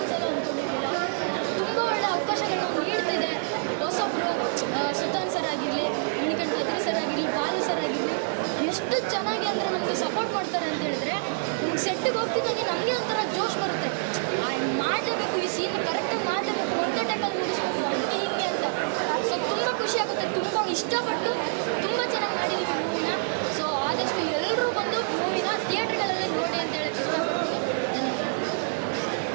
ಅಂದ್ಕೊಂಡಿರಲಿಲ್ಲ. ತುಂಬ ಒಳ್ಳೆ ಅವಕಾಶಗಳನ್ನ ನೀಡ್ತಿದೆ ಹೊಸೊಬ್ಬರು. ಸುತಾನ್ ಸರ್ ಆಗಿರಲಿ, ಮಣಿಕಂಠ ಅದ್ರಿ ಸರ್ ಆಗಿರಲಿ, ಬಾಲು ಸರ್ ಆಗಿರಲಿ, ಎಷ್ಟು ಚೆನ್ನಾಗಿ ಅಂದರೆ ನಮಗೆ ಸಪೋರ್ಟ್ ಮಾಡ್ತಾರೆ ಅಂತ ಹೇಳಿದ್ರೆ ನಮ್ಗೆ ಸೆಟ್ಟಿಗೆ ಹೋಗ್ತಿದ್ದಾಗೆ ನಮಗೆ ಒಂಥರ ಜೋಶ್ ಬರುತ್ತೆ. ಮಾಡಲೇಬೇಕು, ಈ ಸೀನ್ ಕರೆಕ್ಟಾಗಿ ಮಾಡಲೇಬೇಕು, ಒಂದೇ ಟೈಮಲ್ಲಿ ಮುಗಿಸ್ಬೇಕು, ಹಂಗೆ ಹಿಂಗೆ ಅಂತ. ಸೊ ತುಂಬ ಖುಷಿಯಾಗುತ್ತೆ. ತುಂಬ ಇಷ್ಟಪಟ್ಟು ತುಂಬ ಚೆನ್ನಾಗಿ ಮಾಡಿದ್ದೀವಿ ಮೂವಿನ. ಸೊ ಆದಷ್ಟು ಎಲ್ಲರೂ ಬಂದು ಮೂವಿನ ಥಿಯೇಟ್ರ್ಗಳಲ್ಲೇ ನೋಡಿ ಅಂತ ಹೇಳಕ್ಕೆ ಇಷ್ಟಪಡ್ತೀನಿ.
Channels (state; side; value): silent; left; 60 dB below the other